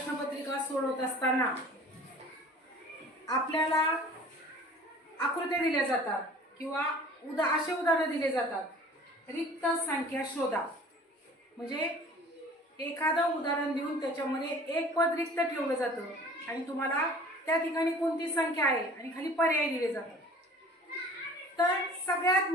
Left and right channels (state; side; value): normal; both; correlation 0.46